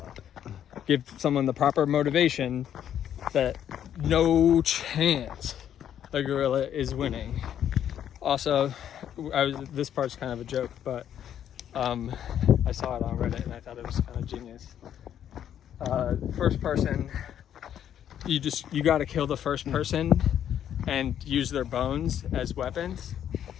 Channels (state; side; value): quieter; right; 10.0 dB